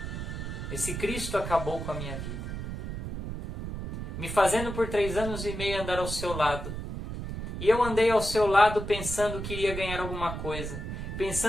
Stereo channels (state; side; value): noise; right; rumble, 6 dB below the sound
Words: Esse Cristo acabou com a minha vida, me fazendo por 3 anos e meio andar ao seu lado. E eu andei ao seu lado pensando que iria ganhar alguma coisa,